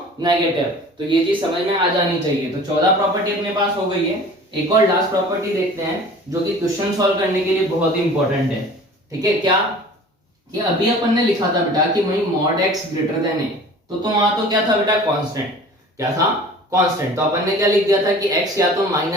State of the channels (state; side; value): normal; both; correlation 0.44